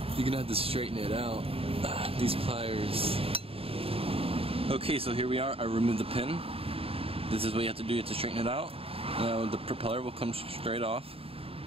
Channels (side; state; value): left; late; 0.27 ms